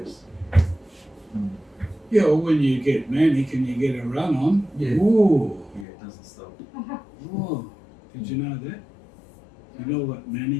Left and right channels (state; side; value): drops out; right; at 5.9 s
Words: Yeah, well, when you get manic and you get a run on, Yeah. ooh, Yeah, it doesn't stop. ooh. Did you know that? You know what